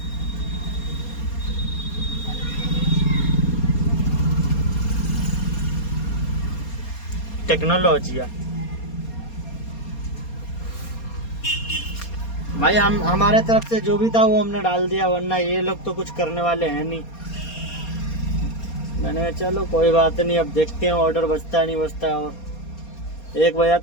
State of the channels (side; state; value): right; late; 4.3 ms